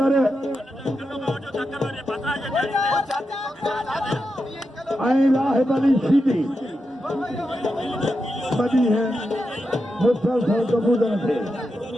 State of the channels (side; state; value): both; normal; correlation 0.87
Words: लाहिब अली सीधी बदी है मुसलसल कबूतर थे